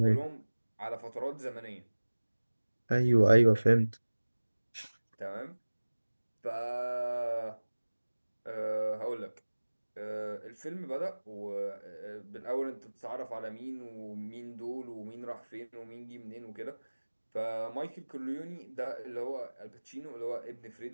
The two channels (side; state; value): both; inverted; correlation -1.00